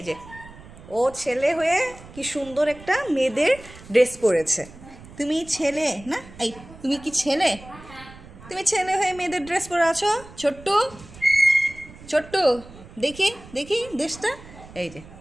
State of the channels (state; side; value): noise; right; rumble, 19 dB below the sound